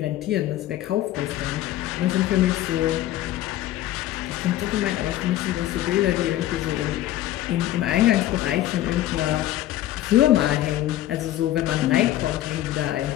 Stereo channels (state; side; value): quieter; right; 13.9 dB